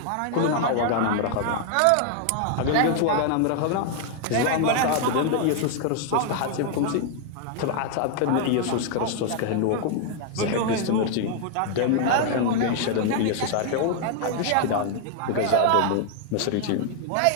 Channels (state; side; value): different; both; correlation 0.00